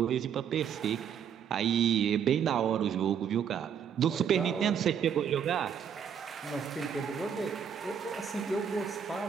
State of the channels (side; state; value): left; quieter; 8.0 dB